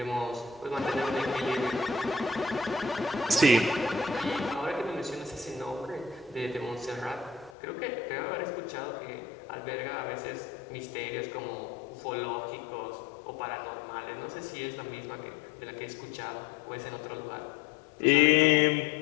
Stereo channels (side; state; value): right; drops out; at 7.6 s